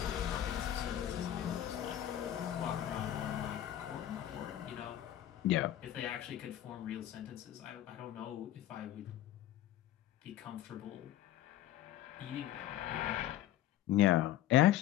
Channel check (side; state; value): right; quieter; 12.6 dB